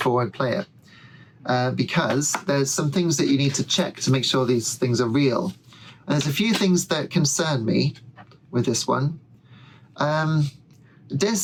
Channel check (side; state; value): both; identical; correlation 1.00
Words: I play it. Because there's some things that you need to check to make sure these things are real. And there's a few things that concern me with this one.